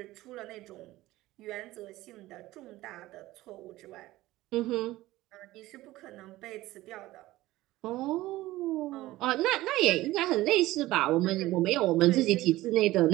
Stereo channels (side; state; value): left; quieter; 17.2 dB